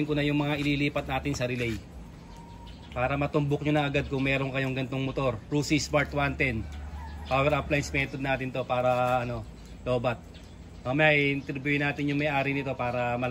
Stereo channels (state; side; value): identical; both; correlation 1.00